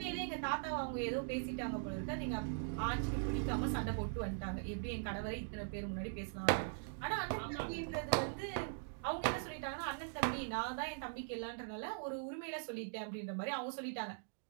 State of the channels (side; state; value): left; silent; digital silence